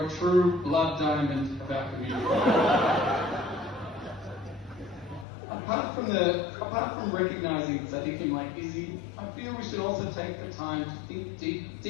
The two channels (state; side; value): drops out; right; at 5.2 s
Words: a true blood diamond of our community. Apart from recognising Sadiqim like Izzy, I feel we should also take the time to think